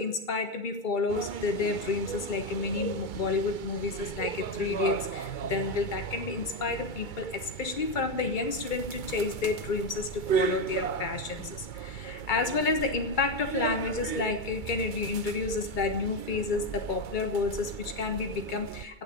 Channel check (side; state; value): right; late; 2.3 ms